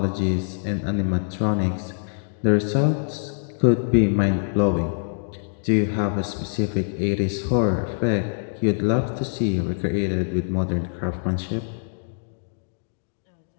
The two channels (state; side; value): silent; right; digital silence